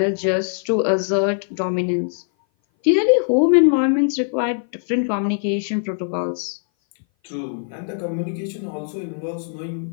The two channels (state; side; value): silent; right; 58 dB below the other